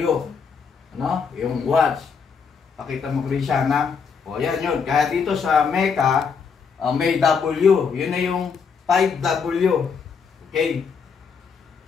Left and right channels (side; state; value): right; quieter; 5.9 dB